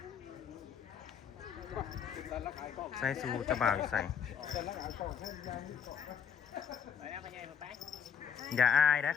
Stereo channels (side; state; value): right; quieter; 7.6 dB